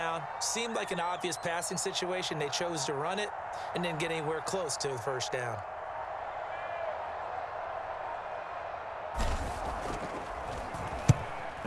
seemed like an obvious passing situation. They chose to run it and didn't get anywhere close to the 1st down.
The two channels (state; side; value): identical; both; correlation 1.00